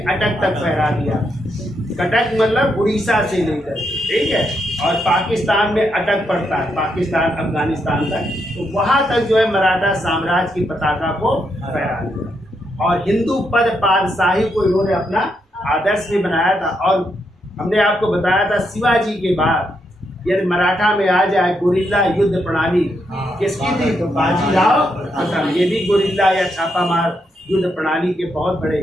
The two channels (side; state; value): both; normal; correlation 0.80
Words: तक फहरा दिया। कटक मतलब उड़ीसा से लेकर, ठीक है, और पाकिस्तान में अटक पड़ता है, पाकिस्तान अफगानिस्तान तक, तो वहां तक जो है मराठा साम्राज्य की पताका को फहरा दिया। और हिंदू पद पातशाही को इन्होंने अपना आदर्श भी बनाया था। और हमने आपको बताया था शिवाजी के बाद यदि मराठा में आ जाए गुरिल्ला युद्ध प्रणाली किसकी थी? तो बाजीराव प्रथम। ये भी गुरिल्ला या छापामार युद्ध प्रणाली के बहुत